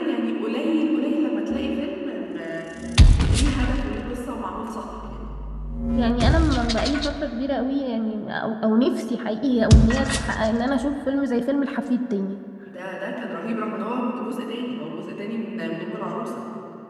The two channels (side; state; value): both; identical; correlation 1.00